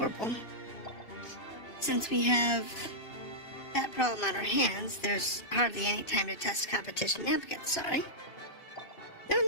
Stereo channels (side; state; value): right; late; 2.7 ms